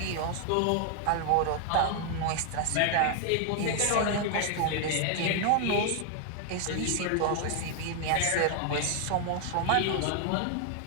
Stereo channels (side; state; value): both; different; correlation 0.00